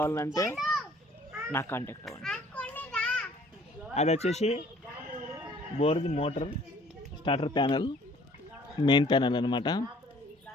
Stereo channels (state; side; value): normal; both; correlation 0.56